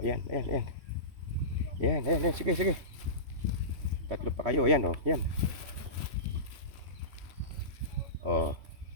yan, ayan, ayan. Yan, ayan, ayan, sige, sige. Tatlo pa kayo, ayan o, yan. O.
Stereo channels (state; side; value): late; left; 3.1 ms